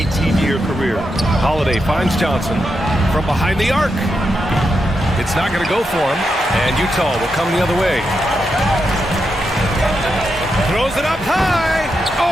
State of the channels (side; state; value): both; normal; correlation 0.85